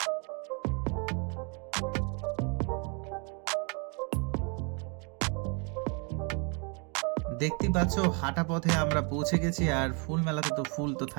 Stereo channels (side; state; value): left; quieter; 35.0 dB